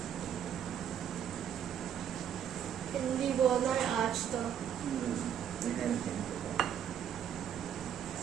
हिंदी बोलना है आज तो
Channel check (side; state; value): left; quieter; 9.2 dB